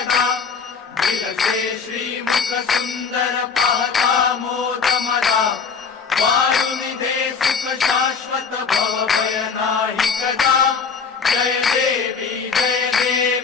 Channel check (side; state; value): right; quieter; 5.6 dB